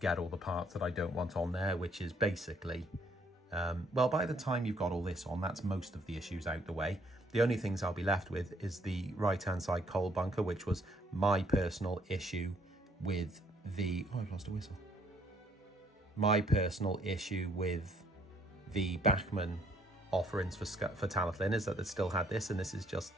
all the parts that I don't want on there, which is basically, well, by the time you've got all this on, that's most of the issues out the way. The only things I'll be left with is the right-hand side coal bunker, which was my personal issue with the, oh, I've lost a whistle. My personal issue with the Bachmann offerings for Talyllyn is that it still had this, and this is just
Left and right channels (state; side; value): normal; both; correlation 0.66